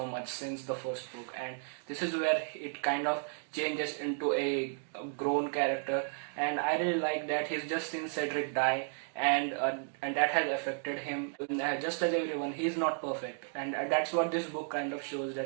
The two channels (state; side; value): silent; left; 55 dB below the other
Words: much since the first book, and this is where it kind of changes into a grown character, and I really like that he's just seen Cedric die, and that has affected him. Just as everyone, he's not perfect, and that's what this book kind of shows,